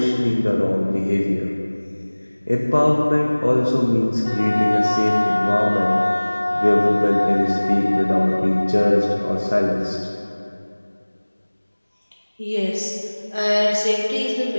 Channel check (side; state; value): both; inverted; correlation -1.00